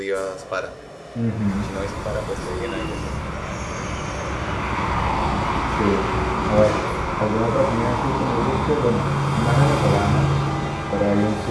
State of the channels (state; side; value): identical; both; correlation 1.00